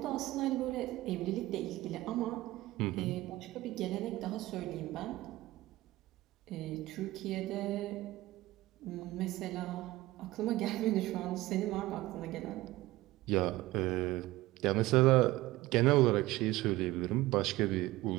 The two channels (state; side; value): quieter; left; 17.9 dB